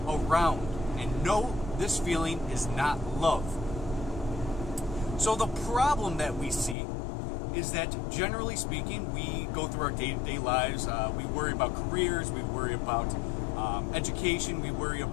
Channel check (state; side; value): drops out; right; at 6.8 s